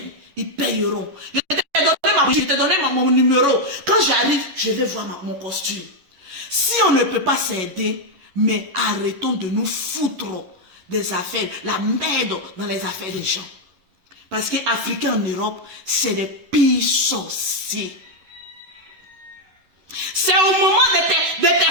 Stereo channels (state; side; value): late; left; 11 ms